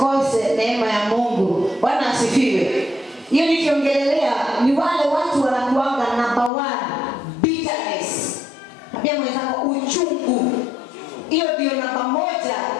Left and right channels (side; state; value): right; drops out; at 6.5 s